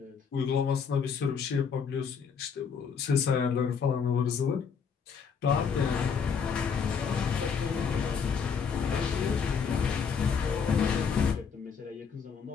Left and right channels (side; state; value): right; quieter; 6.3 dB